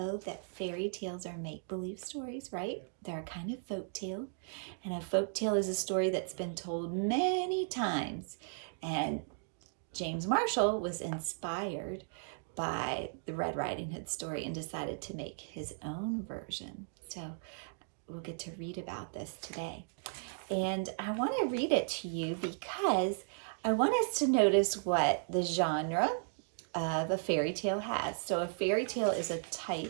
that fairy tales are make-believe stories, right? They're a kind of folk tale. And a folk tale is a story that's been told many times. And James Marshall was inspired by the Red Riding Hood story and decided to make his own version. So we'll get to read about this today. And I want to read it to you because I want us to notice what the genre of a fairy tale has. So a fairy tale is a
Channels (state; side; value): silent; left; digital silence